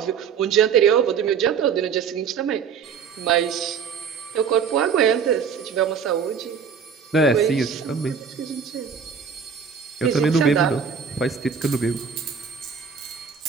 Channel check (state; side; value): quieter; left; 6.6 dB